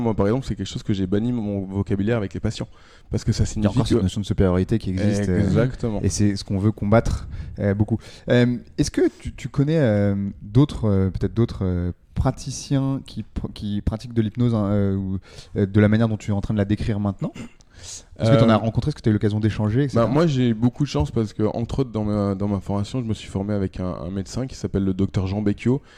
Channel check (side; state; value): both; identical; correlation 1.00